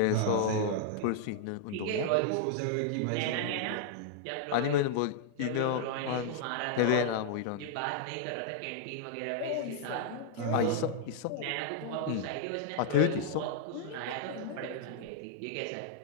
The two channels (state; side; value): different; both; correlation -0.01